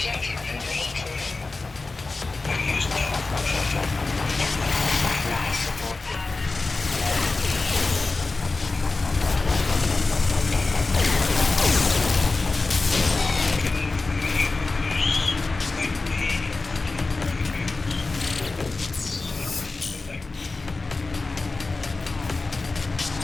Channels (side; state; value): right; quieter; 3.6 dB